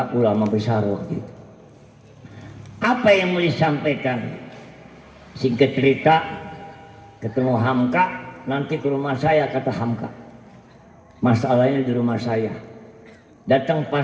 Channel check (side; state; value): both; identical; correlation 1.00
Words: ulama besar waktu itu. Apa yang mau disampaikan? Singkat cerita, ketemu Hamka, nanti ke rumah saya kata Hamka. Masalahnya di rumah saya. Datang